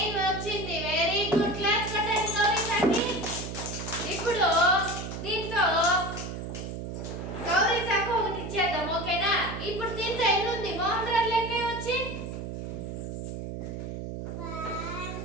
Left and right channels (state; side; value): noise; right; hum, 6 dB below the sound